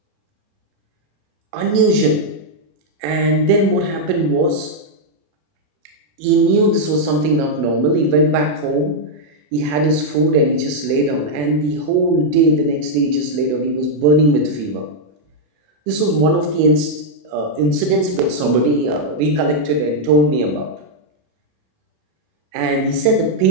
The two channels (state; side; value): late; left; 28 ms